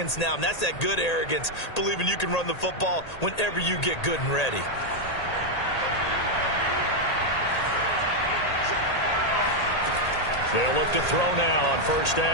now, and that's that good arrogance, believing you can run the football whenever you get good and ready. They'll look to throw now on 1st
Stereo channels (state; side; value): late; right; 1.8 ms